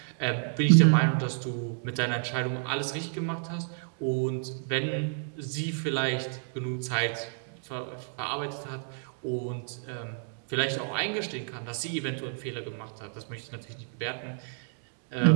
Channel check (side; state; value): left; silent; digital silence